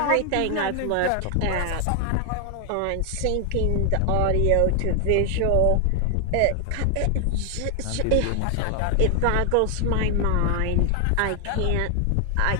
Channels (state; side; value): different; both; correlation 0.00